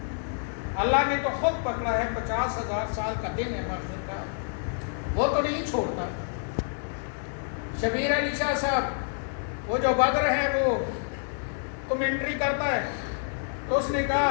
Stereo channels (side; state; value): right; silent; digital silence